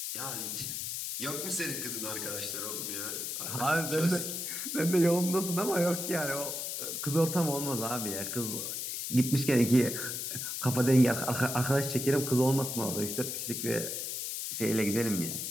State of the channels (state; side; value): noise; left; hiss, 4 dB below the sound